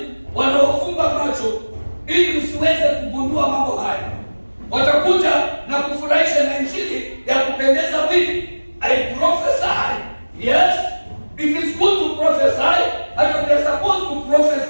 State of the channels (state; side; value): inverted; both; correlation -1.00